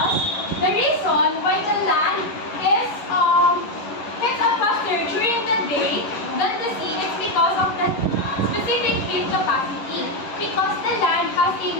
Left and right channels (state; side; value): late; right; 11 ms